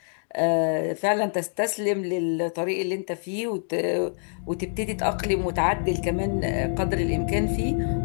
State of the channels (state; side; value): silent; right; digital silence